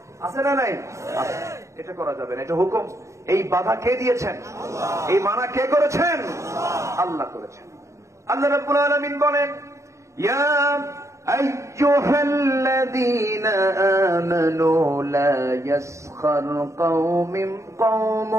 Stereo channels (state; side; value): late; left; 0.14 ms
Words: আছে না নাই? এটা করা যাবে না, এটা হুকুম। এই বাধা কে দিয়েছেন? এই মানা কে করেছেন? আল্লাহ করেছেন। আল্লাহ রাব্বুল আলামিন বলেন, ইয়া আইয়ুহাল্লাযীনা আমানু লা ইয়াসখার